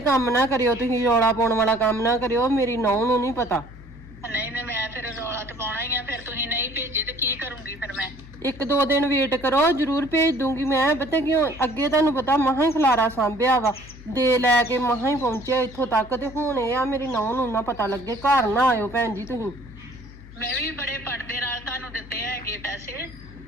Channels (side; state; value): left; noise; hum, 18 dB below the sound